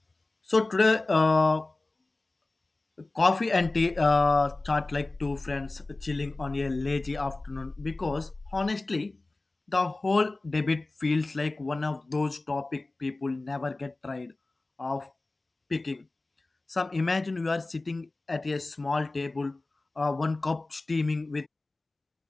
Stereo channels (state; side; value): quieter; right; 3.1 dB